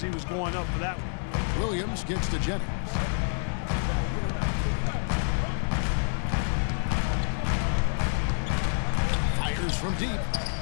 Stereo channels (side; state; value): right; silent; digital silence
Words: he was going up for that one. Williams gets to Jennings. Fires from deep.